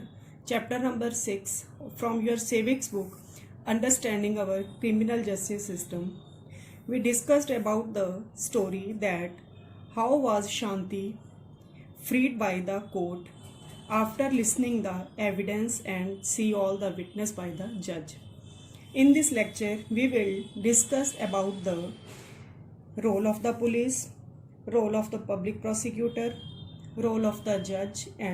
number 6 from your civics book, Understanding Our Criminal Justice System, we discussed about the story that how was Shanti freed by the court after listening the evidence and see all the witness by the judge. In this lecture, we will discuss about the role of the police, role of the public prosecutor, role of the judge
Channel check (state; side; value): identical; both; correlation 1.00